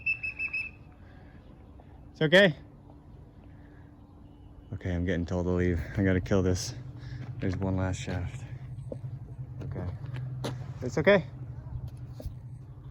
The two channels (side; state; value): both; identical; correlation 1.00